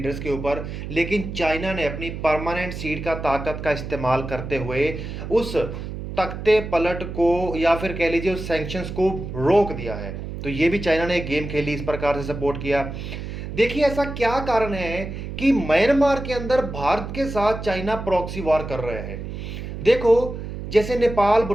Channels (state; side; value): noise; right; hum, 8 dB below the sound